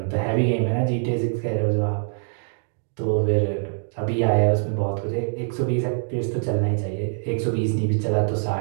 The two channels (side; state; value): left; silent; 63 dB below the other